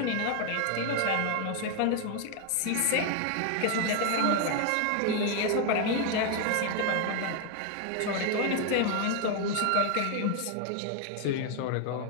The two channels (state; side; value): different; both; correlation 0.00